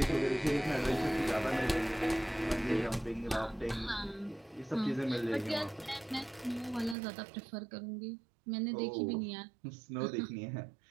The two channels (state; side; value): drops out; left; at 7.0 s